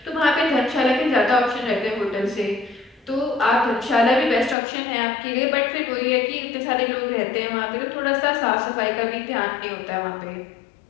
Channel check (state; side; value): drops out; right; at 4.5 s